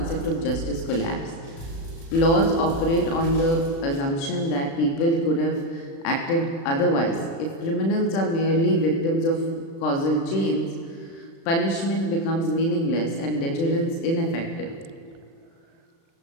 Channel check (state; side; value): late; right; 36 ms